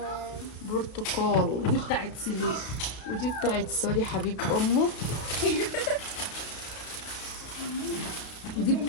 برتقال. دي بتاعت سليم. ودي بتاعت سوري حبيب امه. ودي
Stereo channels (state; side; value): late; right; 33 ms